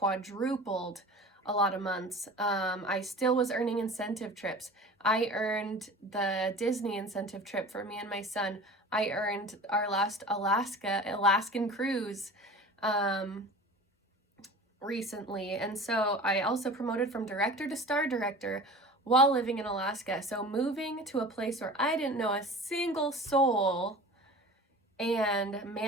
a lot of months. I still was earning incentive trips. I earned the Disney incentive trip for me and my son. I earned our last Alaskan cruise recently. And so I also promoted from director to star director while living in Alaska. So moving to a place where I didn't know a single soul and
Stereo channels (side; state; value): both; normal; correlation 0.38